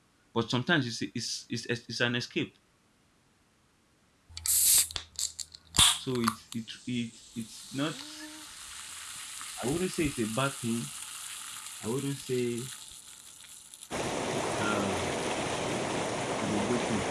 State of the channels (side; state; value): both; identical; correlation 1.00